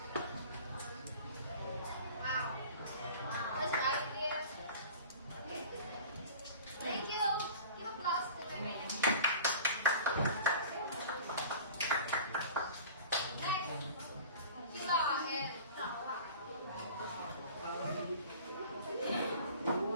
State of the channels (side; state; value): both; inverted; correlation -0.42